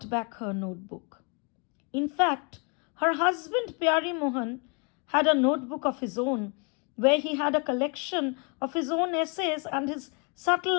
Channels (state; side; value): quieter; right; 35.8 dB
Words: back her notebook. In fact, her husband Pyari Mohan had a notebook of his own where he had a collection of his own essays and his